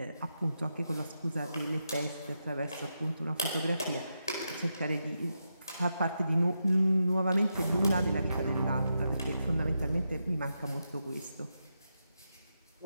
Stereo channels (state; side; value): inverted; both; correlation -0.86